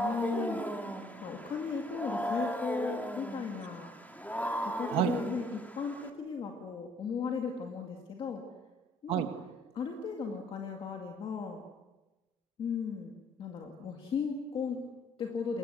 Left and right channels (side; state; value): both; normal; correlation 0.62